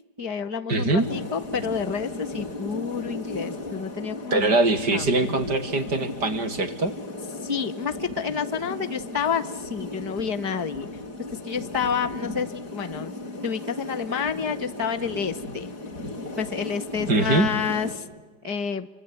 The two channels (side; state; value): left; late; 5.0 ms